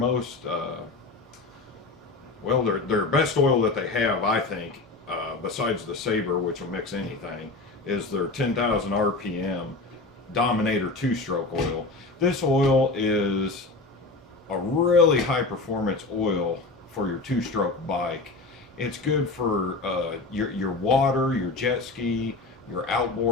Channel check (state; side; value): quieter; right; 3.5 dB